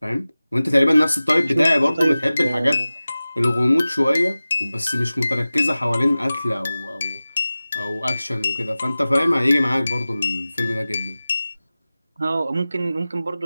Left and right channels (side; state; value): both; inverted; correlation -0.96